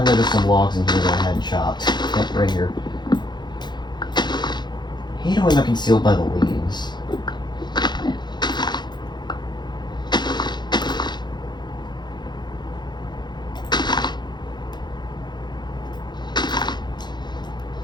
there's some logs in here that I hadn't chopped. Yep, right here. I hate when they're concealed by the leaves.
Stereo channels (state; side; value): late; right; 0.21 ms